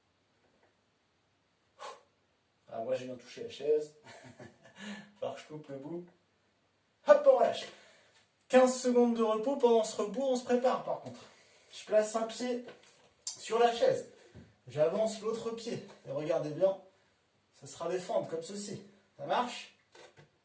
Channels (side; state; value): both; identical; correlation 1.00